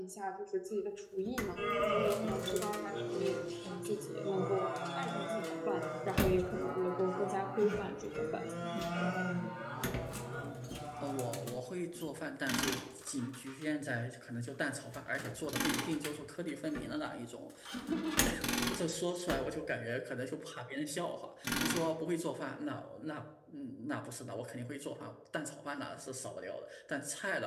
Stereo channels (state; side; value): identical; both; correlation 1.00